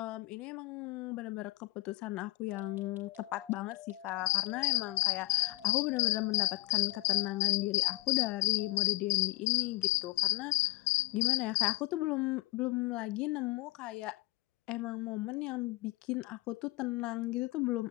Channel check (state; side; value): quieter; right; 20.7 dB